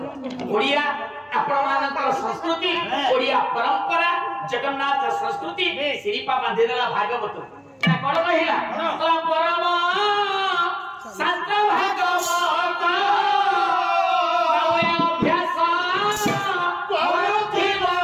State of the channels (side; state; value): both; identical; correlation 1.00